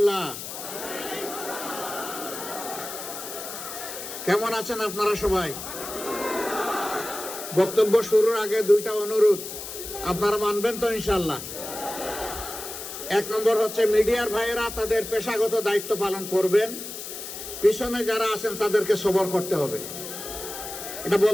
কেমন আছেন আপনারা সবাই? বক্তব্য শুরুর আগে দুইটা অনুরোধ আপনারা মানবেন তো ইনশাআল্লাহ। এক নম্বর হচ্ছে মিডিয়ার ভাইয়েরা তাদের পেশাগত দায়িত্ব পালন করবেন, পিছনে যারা আছেন তাদেরকে সবর করতে হবে। এটা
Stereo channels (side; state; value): left; noise; hiss, 9 dB below the sound